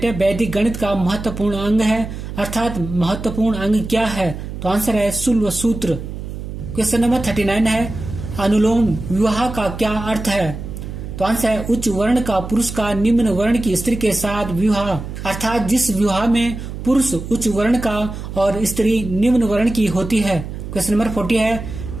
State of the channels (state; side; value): noise; right; hum, 8 dB below the sound